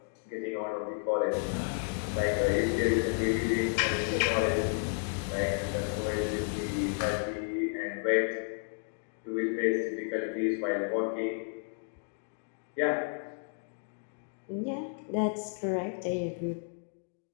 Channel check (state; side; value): silent; right; 55 dB below the other